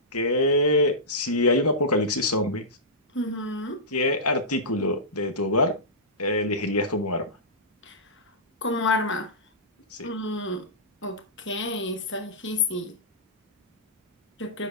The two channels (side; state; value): both; normal; correlation -0.17